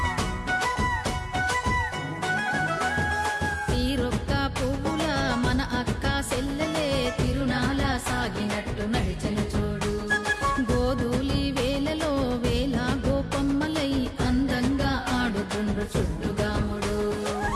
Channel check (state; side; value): identical; both; correlation 1.00